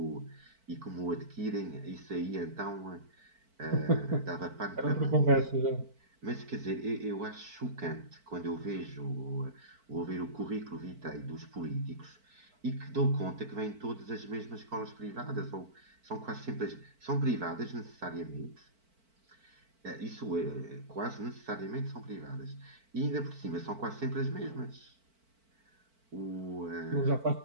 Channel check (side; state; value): left; late; 4.5 ms